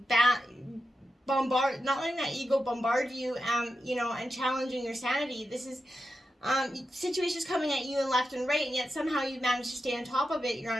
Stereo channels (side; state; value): both; normal; correlation 0.89